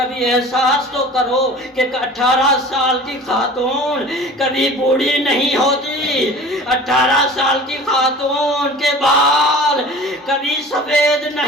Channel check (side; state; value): both; normal; correlation 0.41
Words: احساس تو کرو کہ 18 سال کی خاتون کبھی بوڑھی نہیں ہوتی. 18 سال کی خاتون کے بال کبھی سفید